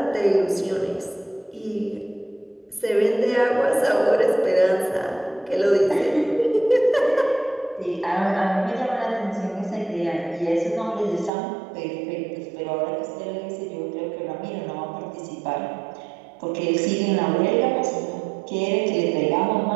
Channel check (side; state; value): left; drops out; at 11.3 s